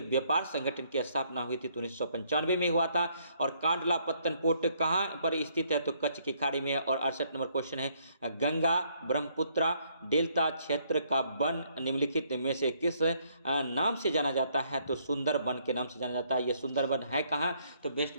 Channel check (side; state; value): both; inverted; correlation -0.68